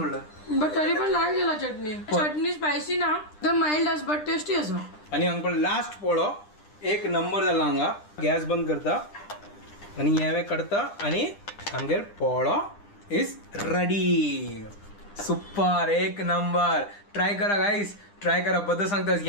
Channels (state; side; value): late; right; 9.9 ms